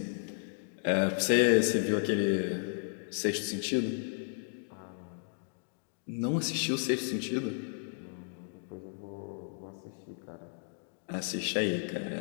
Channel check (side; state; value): right; silent; 55 dB below the other